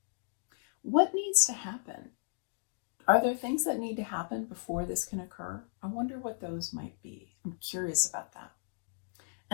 What needs to happen? Are there things that need to happen before this can occur? I wonder what those might be. I'm curious about that.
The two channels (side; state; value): right; silent; digital silence